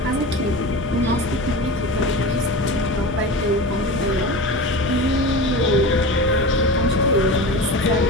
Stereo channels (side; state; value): both; normal; correlation 0.30